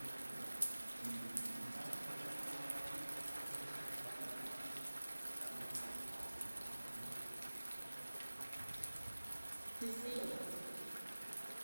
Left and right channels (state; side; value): inverted; both; correlation -1.00